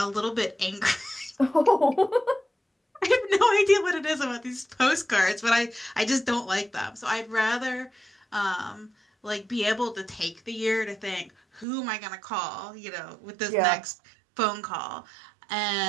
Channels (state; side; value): drops out; left; at 11.7 s